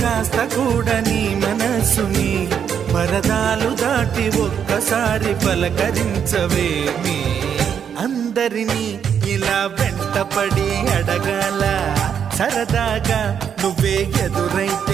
కూడా నీ మనసుని పరదాలు దాటి ఒక్కసారి పలకరించవేమి అందరినీ ఇలా వెంటపడి అడగాల సరదాగా నువ్వే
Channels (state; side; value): quieter; left; 8.0 dB